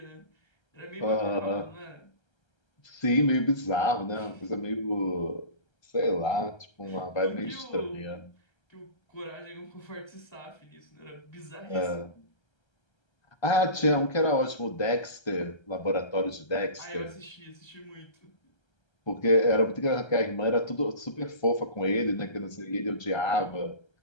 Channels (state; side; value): late; right; 1.3 ms